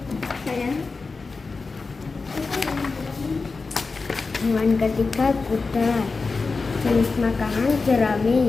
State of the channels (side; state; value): right; quieter; 4.2 dB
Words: Hewan ketiga kuda. Jenis makanan